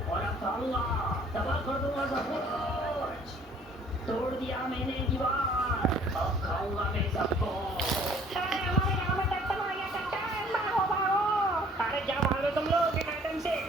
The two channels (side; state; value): both; normal; correlation 0.56